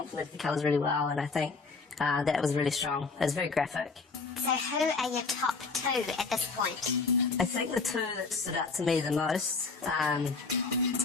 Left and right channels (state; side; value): quieter; right; 4.4 dB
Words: the colours really well, and I think that was really strong. It was very graphic. So who are your top two at this point? I think the two that stood out to me the most,